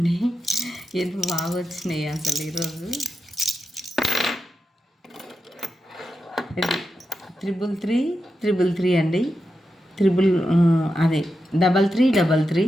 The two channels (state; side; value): normal; both; correlation 0.88